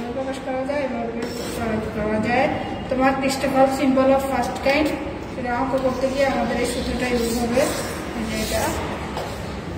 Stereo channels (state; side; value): identical; both; correlation 1.00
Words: প্রকাশ করা যায়, এভাবে প্রকাশ করা যায়। তোমার ক্রিস্টোফাল সিম্বল অফ ফার্স্ট কাইন্ড, সেটা অঙ্ক করতে গিয়ে আমাদের এই সূত্রটা ইউজ হবে এটা।